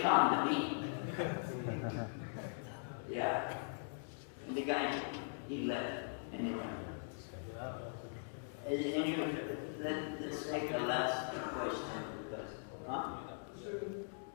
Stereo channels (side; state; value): right; silent; digital silence